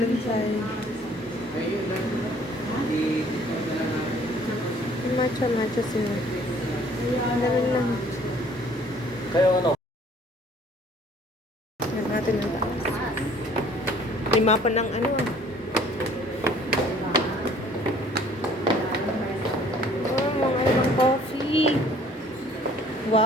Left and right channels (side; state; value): both; normal; correlation 0.55